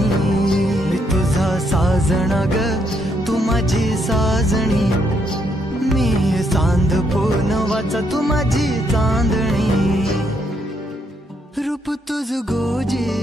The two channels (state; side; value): normal; both; correlation 0.75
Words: मी तुझा साजण ग तू माझी साजणी मी चांद पूनवाचा तू माझी चांदणी रूप तुझ